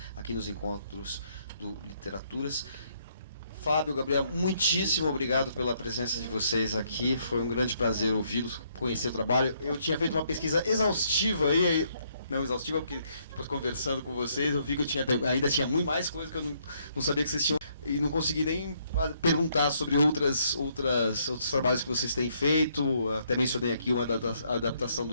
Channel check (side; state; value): both; inverted; correlation -0.71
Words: aqui nos encontros do Literaturas. Fábio, Gabriel, muitíssimo obrigado pela presença de vocês aqui. Foi um grande prazer ouvi-los, conhecer o trabalho. Eu tinha feito uma pesquisa exaustiva aí, não exaustiva, porque depois conversando com vocês, eu vi que eu ainda tinha muito mais coisa que eu não sabia que vocês tinham, e não consegui nem perguntar sobre outros trabalhos que vocês têm feito. Até mencionei aqui uma adaptação